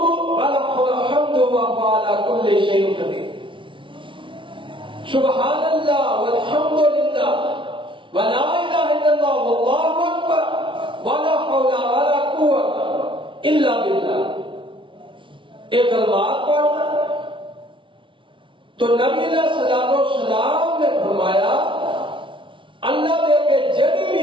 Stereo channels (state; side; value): late; left; 0.25 ms